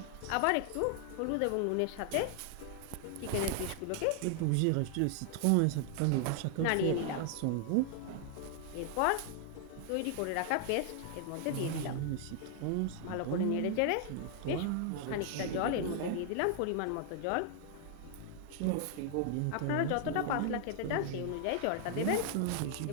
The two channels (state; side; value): different; both; correlation 0.00